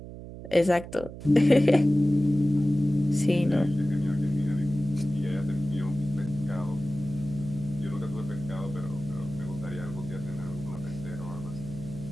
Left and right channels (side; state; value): right; noise; hum, 12 dB below the sound